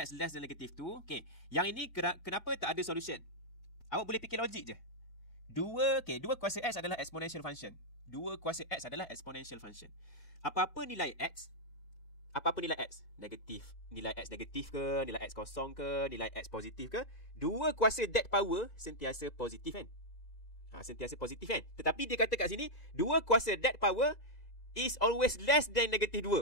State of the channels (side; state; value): right; late; 2.0 ms